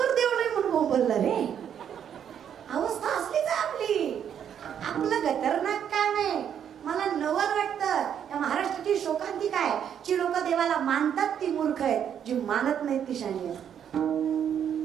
देव नाही म्हणून बोलला रे. अवस्था असलीच आपली. आपलं खतरनाक काम आहे. मला नवल वाटतं या महाराष्ट्राची शोकांतिका आहे. जी लोक देवाला मानतात ती मूर्ख आहेत, जी मानत नाहीत ती शाणी आहेत.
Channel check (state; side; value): quieter; left; 8.8 dB